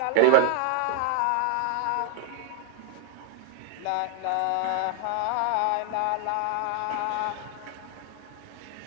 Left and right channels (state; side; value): different; both; correlation 0.00